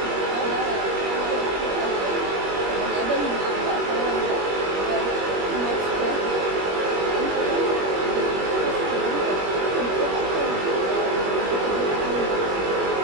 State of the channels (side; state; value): left; late; 21 ms